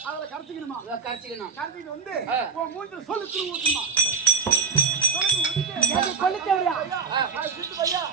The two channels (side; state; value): left; quieter; 5.5 dB